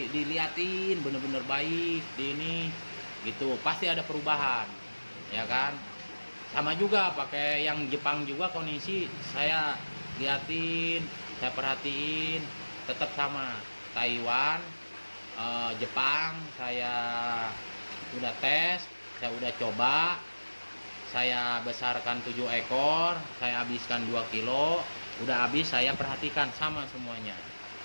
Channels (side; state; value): both; inverted; correlation -1.00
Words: diliatin bener-bener baik di ini gitu, pasti ada perubahan ya kan. Sama juga pakai yang Jepang juga, kondisi saya liatin, saya perhatiin tetap sama. Taiwan, Jepang saya udah tes, saya udah coba, saya besarkan 7 ekor, saya habiskan 2 kilo, udah habis saya perhatikan sama semuanya